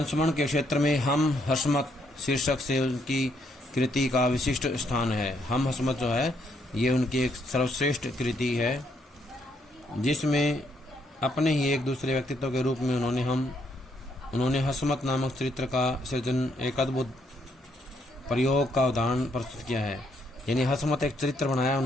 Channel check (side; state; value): both; normal; correlation 0.73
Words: के क्षेत्र में हम हसमत शीर्षक से उनकी कृति का विशिष्ट स्थान है। हम हसमत जो है ये उनकी एक सर्वश्रेष्ठ कृति है, जिसमें अपने ही एक दूसरे व्यक्तित्व के रूप में उन्होंने हसमत नामक चरित्र का सृजन एक अद्भुत प्रयोग का उदाहरण प्रस्तुत किया है। यानी हसमत एक चरित्र बनाया